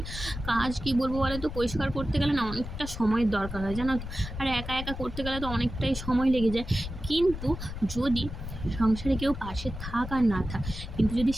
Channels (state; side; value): noise; left; rumble, 8 dB below the sound